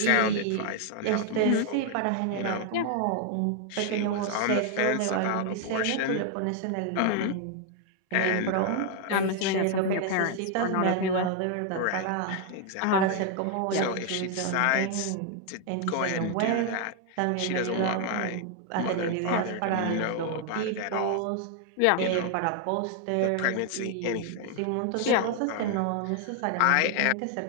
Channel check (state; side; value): different; both; correlation 0.00